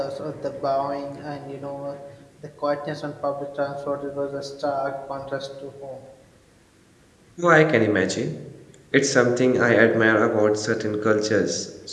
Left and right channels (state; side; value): identical; both; correlation 1.00